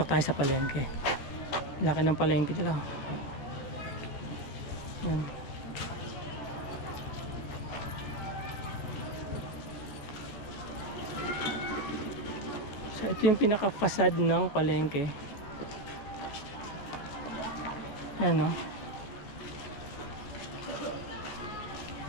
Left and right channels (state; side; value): late; right; 14 ms